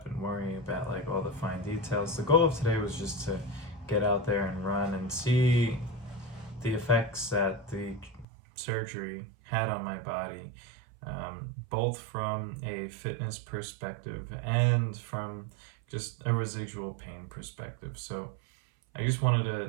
and worrying about like all the fine details. The goal of today was just to get out there and run and see the effects that the surgery had on my body, both from a fitness perspective and from just a residual pain perspective. So I just wanted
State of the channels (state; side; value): drops out; left; at 8.2 s